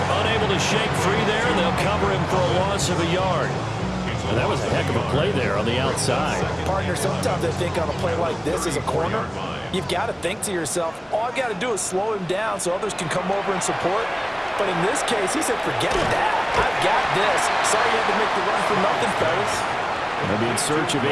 unable to shake free there, and they'll cover him for a loss of a yard. And that was a heck of a play there on the outside. Partner, sometimes I think on a play like this as a corner, you've got to think to yourself, all I've got to do is slow him down so others can come over and support. But in this case, he said, forget that. I've got this. Sorry you had to make the run for nothing, fellas. They'll be in search of 8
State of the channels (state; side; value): identical; both; correlation 1.00